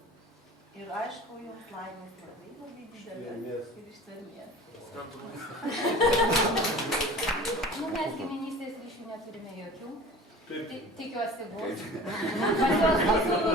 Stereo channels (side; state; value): both; normal; correlation 0.41